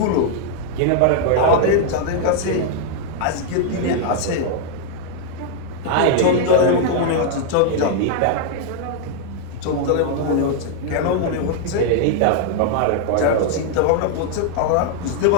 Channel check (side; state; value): both; different; correlation 0.00